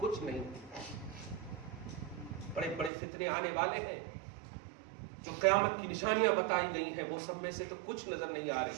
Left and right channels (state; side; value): drops out; left; at 2.9 s